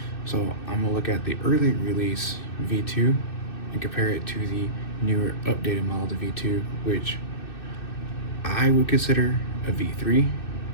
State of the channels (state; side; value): late; right; 2.6 ms